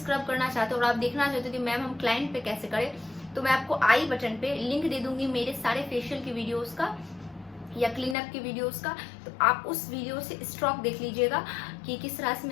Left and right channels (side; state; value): right; drops out; at 8.2 s